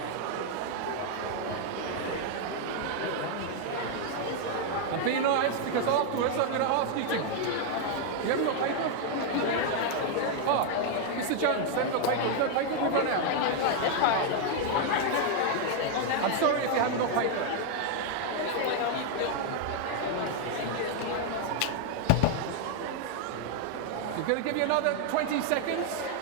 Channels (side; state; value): both; different; correlation 0.00